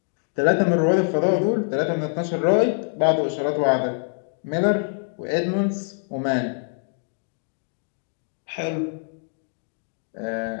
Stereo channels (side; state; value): right; silent; 62 dB below the other